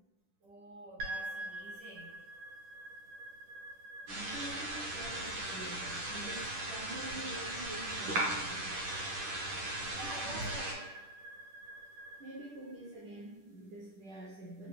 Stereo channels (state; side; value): late; left; 10 ms